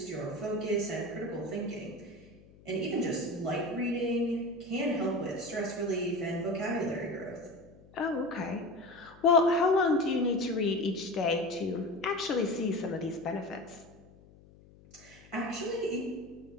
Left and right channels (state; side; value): noise; left; hum, 24 dB below the sound